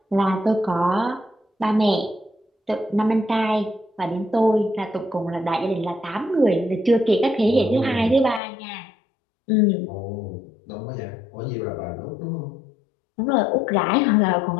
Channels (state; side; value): drops out; right; at 8.4 s